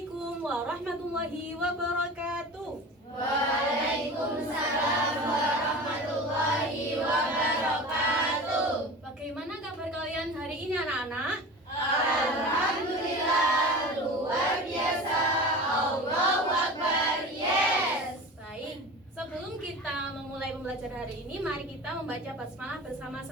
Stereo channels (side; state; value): both; normal; correlation 0.34